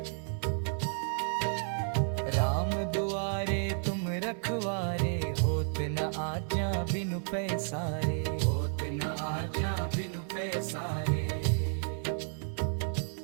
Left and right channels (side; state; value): left; silent; digital silence